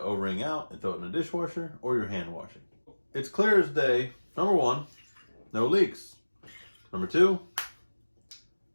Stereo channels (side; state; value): both; inverted; correlation -1.00